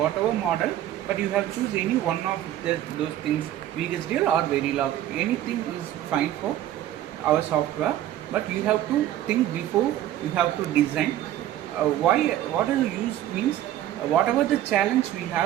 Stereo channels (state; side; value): quieter; left; 12.6 dB